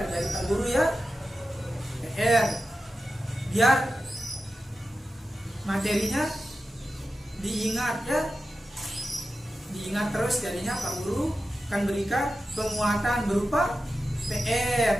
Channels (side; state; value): both; normal; correlation 0.92